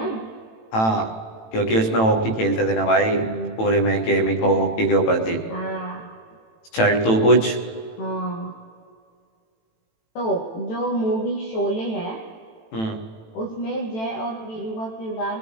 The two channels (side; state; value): right; late; 18 ms